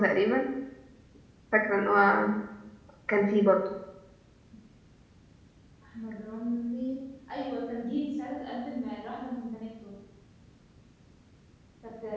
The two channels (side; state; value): both; identical; correlation 1.00